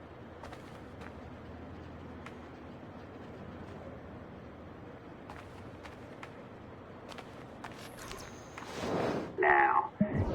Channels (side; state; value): both; identical; correlation 1.00